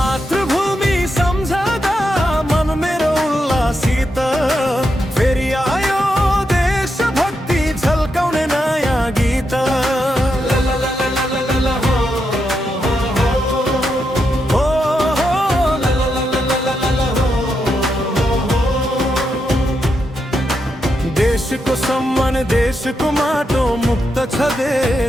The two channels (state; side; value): normal; both; correlation 0.84